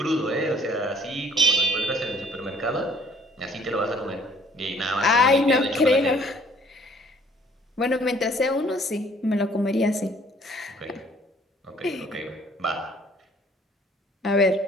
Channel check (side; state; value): both; normal; correlation 0.58